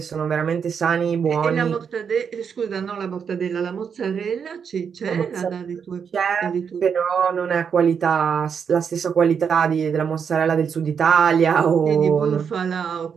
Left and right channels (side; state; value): left; quieter; 6.8 dB